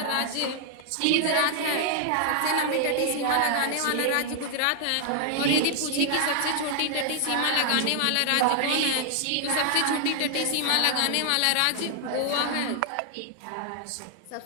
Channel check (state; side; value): different; both; correlation 0.00